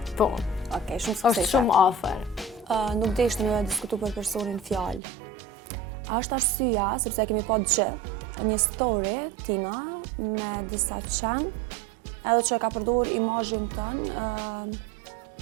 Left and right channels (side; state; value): left; drops out; at 5.0 s